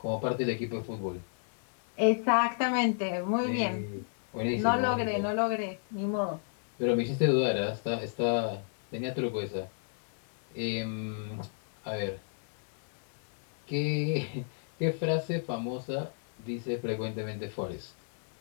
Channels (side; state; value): right; silent; digital silence